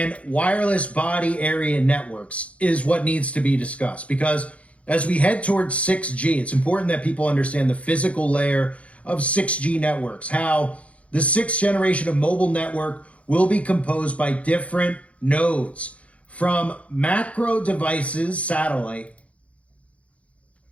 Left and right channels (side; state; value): right; late; 0.064 ms